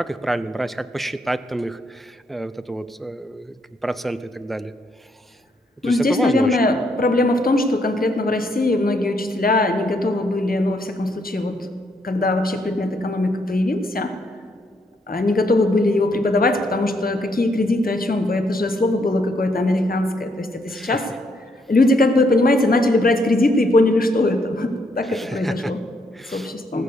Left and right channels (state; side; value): normal; both; correlation 0.74